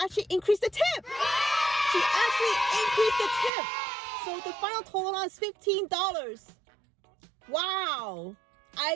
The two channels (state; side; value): drops out; left; at 3.5 s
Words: increased the tip. So the final total is $15. Wow.